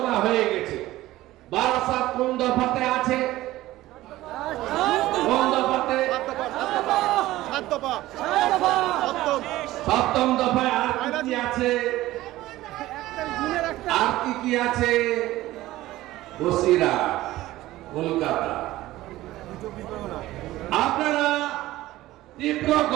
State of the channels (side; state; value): left; quieter; 16.5 dB